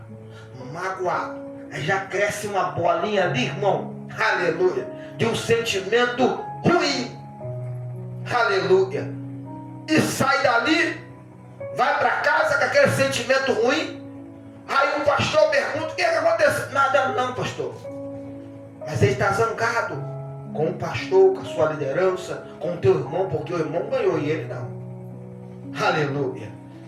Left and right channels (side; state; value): both; identical; correlation 1.00